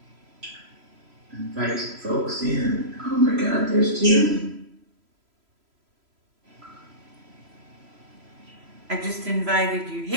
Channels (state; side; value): late; left; 3.0 ms